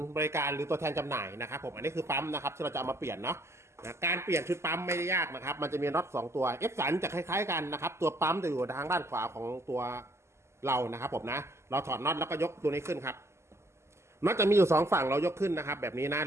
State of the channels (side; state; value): left; late; 0.13 ms